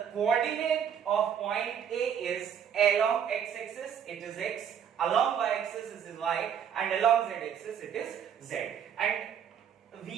coordinate of point A is along x-axis, it is x, along y-axis it is y, and along z-axis it is z. And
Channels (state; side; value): quieter; left; 8.3 dB